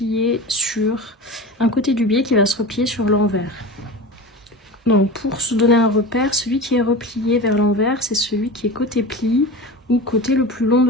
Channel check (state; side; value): normal; both; correlation 0.29